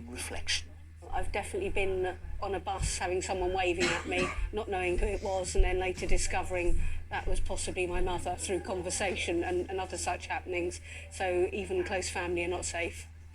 reflection. I've definitely been on a bus having someone waving at me, not knowing who it was, and then later discovering that was possibly my mother through conversation and other such happenings. So even close family are not safe.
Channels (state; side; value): identical; both; correlation 1.00